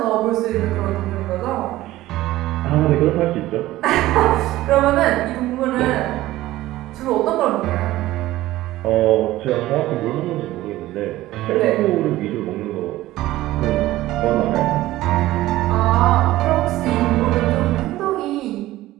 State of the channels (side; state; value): left; quieter; 16.2 dB